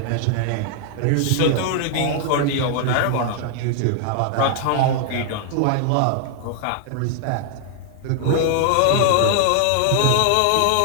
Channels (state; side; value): different; both; correlation 0.00